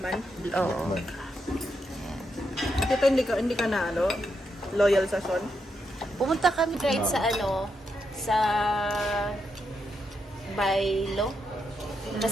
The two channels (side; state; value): both; normal; correlation 0.82